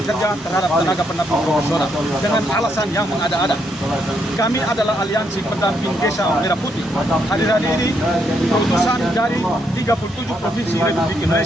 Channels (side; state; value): both; normal; correlation 0.76